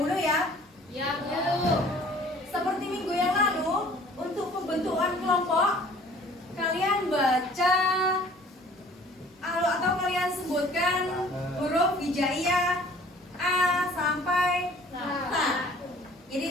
ya. Ya, Bu. Seperti minggu yang lalu, untuk pembentukan kelompok, kalian baca atau kalian sebutkan huruf hijaiyah A sampai Z.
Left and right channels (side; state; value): both; normal; correlation 0.52